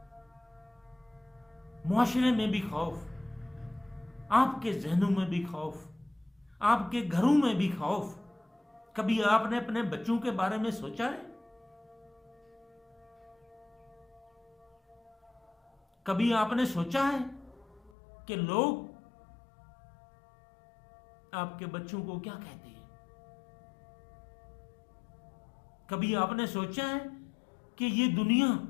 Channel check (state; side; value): drops out; right; at 17.9 s